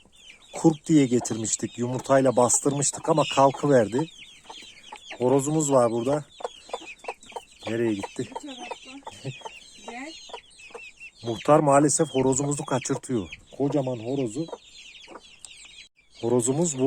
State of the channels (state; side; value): identical; both; correlation 1.00